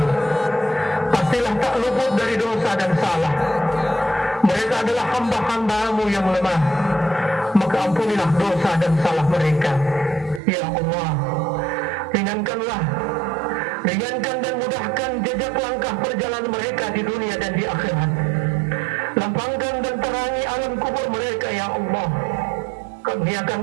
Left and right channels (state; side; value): drops out; left; at 10.4 s